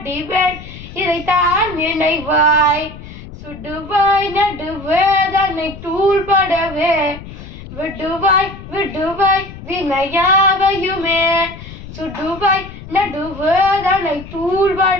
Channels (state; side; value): noise; left; rumble, 14 dB below the sound